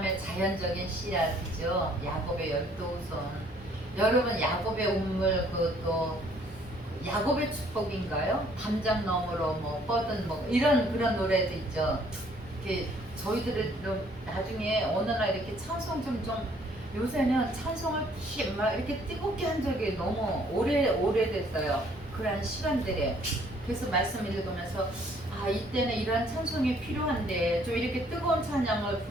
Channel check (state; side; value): normal; both; correlation 0.62